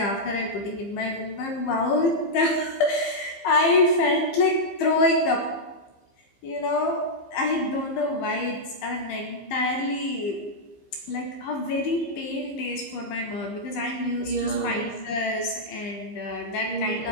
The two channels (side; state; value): right; late; 15 ms